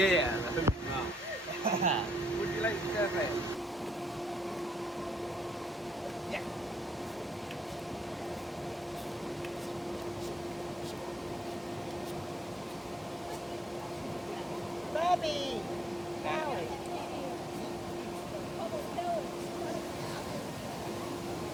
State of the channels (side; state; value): both; normal; correlation 0.75